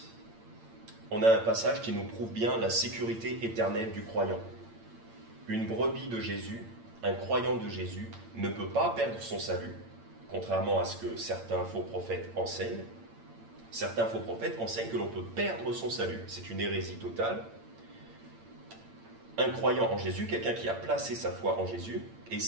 on a un passage qui nous prouve bien la sécurité éternelle du croyant. une brebis de Jésus, un croyant de Jésus, ne peut pas perdre son salut, contrairement à ce que certains faux prophètes enseignent. Certains faux prophètes enseignent que l'on peut perdre son salut. C'est une hérésie totale. Un croyant en Jésus, quelqu'un qui a placé sa foi en Jésus, est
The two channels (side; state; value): left; late; 8.8 ms